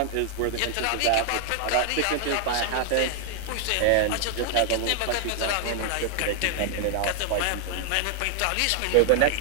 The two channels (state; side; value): different; both; correlation 0.00